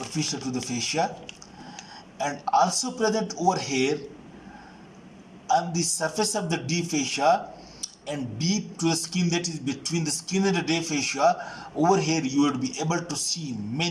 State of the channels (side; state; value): both; identical; correlation 1.00